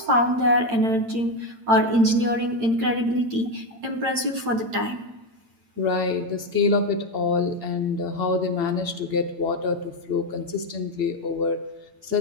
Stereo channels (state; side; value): late; left; 8.8 ms